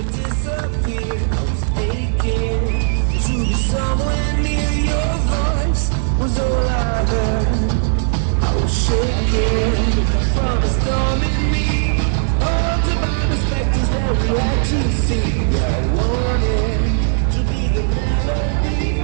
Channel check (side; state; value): left; silent; digital silence